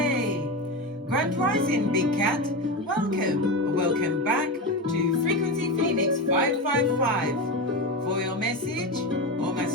Grand Rising, Big Cat. Welcome back to Frequency Phoenix 555 for your message or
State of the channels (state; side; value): normal; both; correlation 0.19